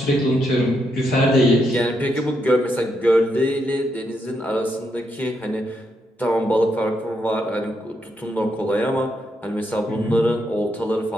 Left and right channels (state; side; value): normal; both; correlation 0.79